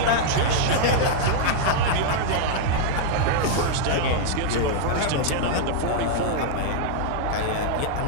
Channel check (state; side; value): different; both; correlation -0.01